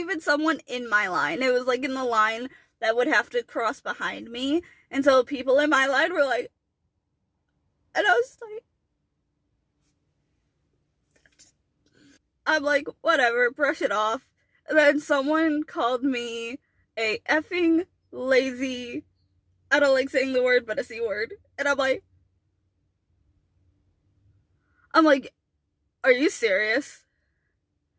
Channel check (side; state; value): both; identical; correlation 1.00